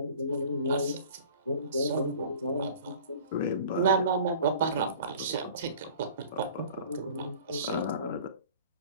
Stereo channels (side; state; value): both; inverted; correlation -0.46